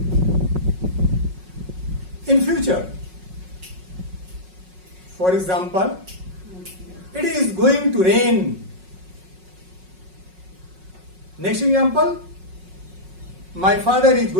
in future. For example, it is going to rain. Next example, my father is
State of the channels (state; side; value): late; left; 5.4 ms